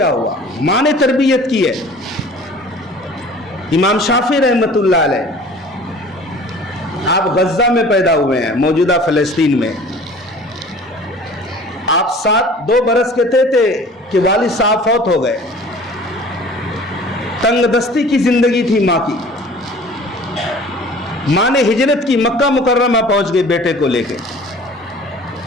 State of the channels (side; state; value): both; normal; correlation 0.46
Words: ہوا؟ ماں نے تربیت کی ہے. امام شافعی رحمت اللہ علیہ، آپ غزہ میں پیدا ہوئے ہیں، موجودہ فلسطین میں. آپ 2 برس کے تھے کہ والد صاحب فوت ہو گئے. تنگ دستی کی زندگی تھی ماں کی. ماں نے ہجرت کی، مکہ مکرمہ پہنچ گئی بیٹے کو لے کے،